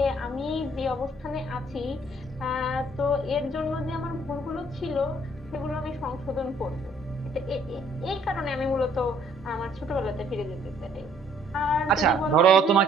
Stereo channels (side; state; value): both; normal; correlation 0.62